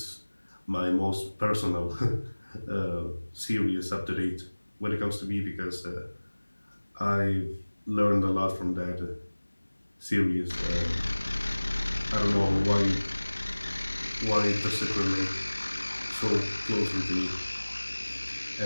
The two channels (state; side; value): inverted; both; correlation -1.00